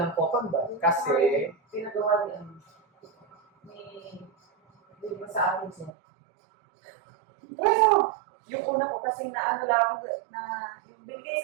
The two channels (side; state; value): left; drops out; at 5.9 s